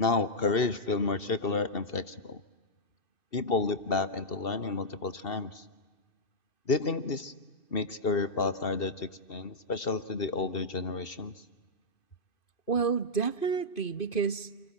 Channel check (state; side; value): late; right; 2.5 ms